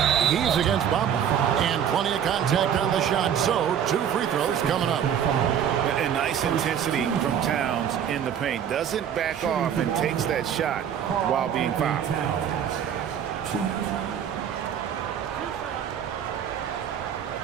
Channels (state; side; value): quieter; left; 8.9 dB